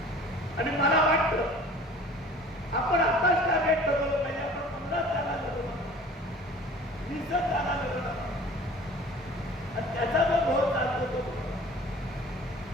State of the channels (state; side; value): normal; both; correlation 0.46